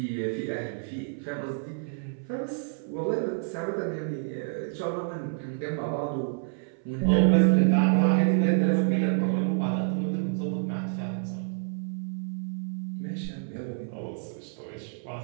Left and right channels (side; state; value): left; silent; 57 dB below the other